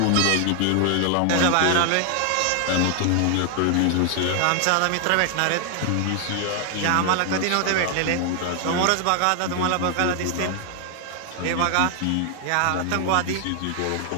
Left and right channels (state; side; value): different; both; correlation 0.00